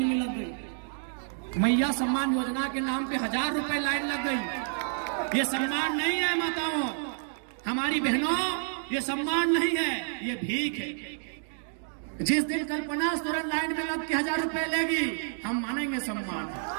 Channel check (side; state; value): left; silent; digital silence